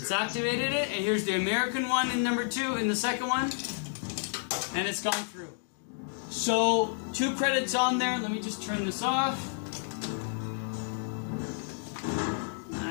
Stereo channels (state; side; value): silent; right; digital silence